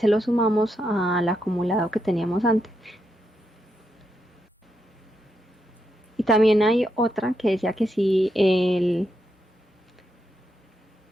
lo sumamos al acumulado que teníamos antes. Y también hay otra que decía que si el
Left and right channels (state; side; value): normal; both; correlation 0.83